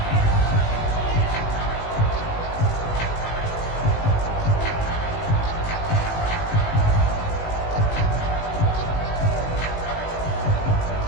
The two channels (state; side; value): late; right; 19 ms